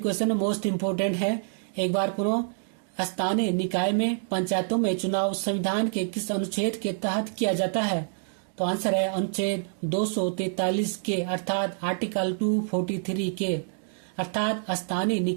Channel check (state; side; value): silent; left; digital silence